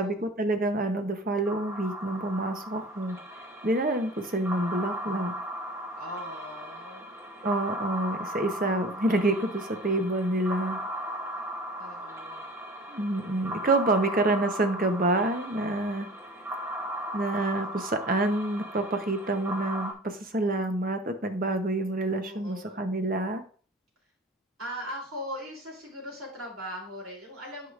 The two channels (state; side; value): normal; both; correlation 0.42